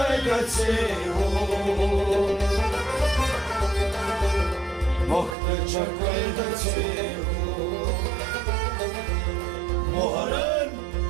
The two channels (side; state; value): left; drops out; at 5.4 s